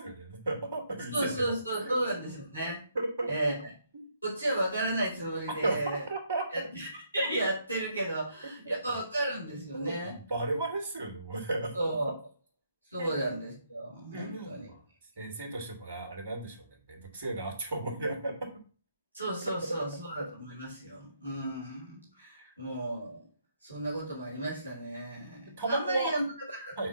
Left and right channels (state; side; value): inverted; both; correlation -0.73